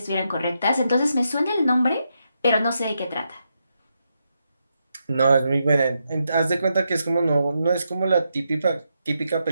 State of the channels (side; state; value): both; inverted; correlation -0.83